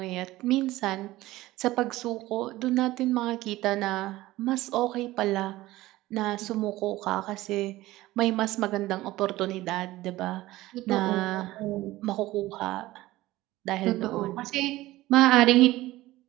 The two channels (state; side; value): quieter; left; 17.3 dB